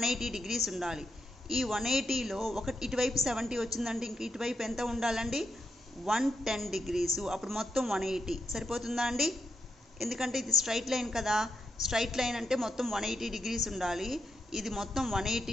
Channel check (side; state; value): both; normal; correlation 0.83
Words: డిగ్రీస్ ఉండాలి. ఈ 180లో ఇటువైపు 70 వచ్చిందండి, ఇంక ఇటువైపు ఎంత ఉండాలండి? 110 డిగ్రీసు. అప్పుడు మొత్తం 180 సరిపోతుందా అండి? ఎందుకంటే ఇది స్ట్రైట్ లైన్ కదా. స్ట్రైట్ లైన్ అంటే మొత్తం 180 డిగ్రీస్ ఉండాలి, ఇది మొత్తం